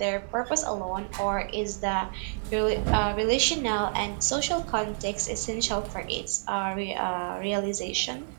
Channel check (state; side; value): silent; left; digital silence